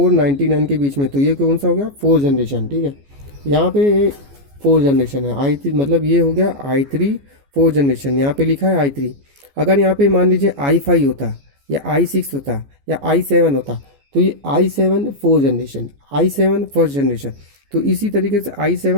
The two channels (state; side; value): late; left; 14 ms